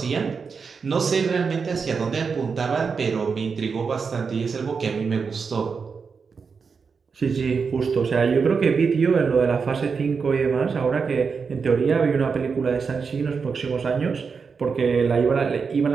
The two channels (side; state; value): left; quieter; 5.4 dB